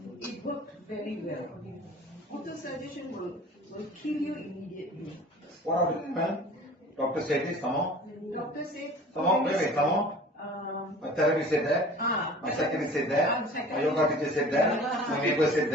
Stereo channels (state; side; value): normal; both; correlation 0.44